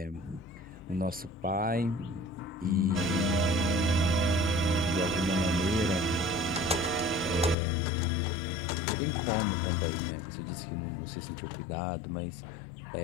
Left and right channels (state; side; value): drops out; right; at 7.6 s